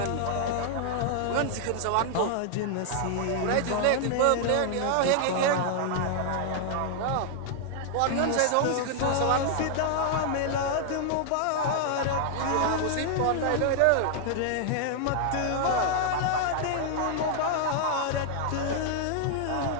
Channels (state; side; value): different; both; correlation 0.00